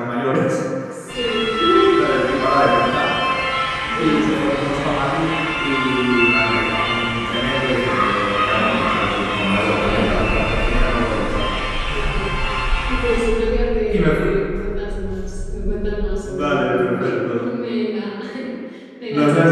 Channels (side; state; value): both; identical; correlation 1.00